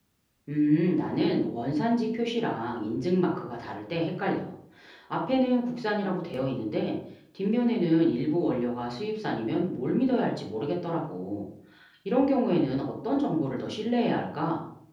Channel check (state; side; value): identical; both; correlation 1.00